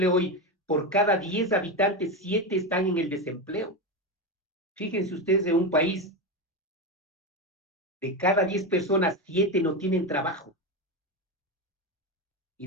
hoy, por cada 10 habitantes, 7 están en el desempleo. Fíjense ustedes, en un país de cada 10 personas, 7 no tienen trabajo. Y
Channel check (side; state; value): both; normal; correlation 0.15